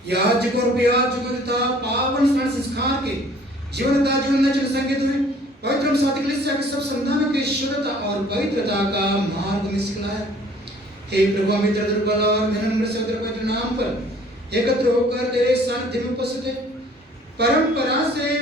याजकों और याजकों तथा पावन स्मरण संस्कार के जीवनता जीवन चल संकेत हुए पवित्र सात्विक कलीसिया के सब संतानों की शुद्धता और पवित्रता का मार्ग में सिखलाया। हे प्रभु हम इधर दुर्बल और विनम्र से पवित्र नाम पर एकत्र होकर तेरे सानिध्य में उपस्थित हैं। परंपरा से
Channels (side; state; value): both; normal; correlation 0.54